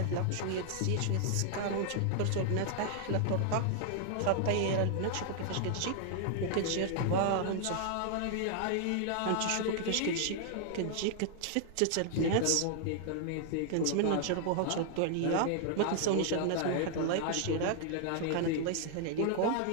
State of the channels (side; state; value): both; different; correlation 0.00